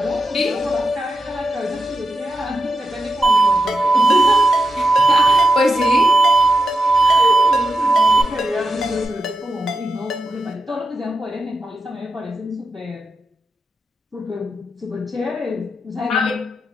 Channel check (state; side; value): normal; both; correlation 0.87